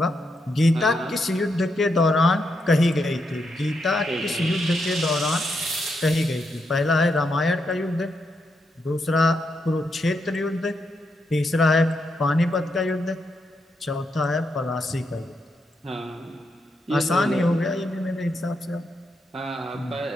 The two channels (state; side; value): normal; both; correlation 0.82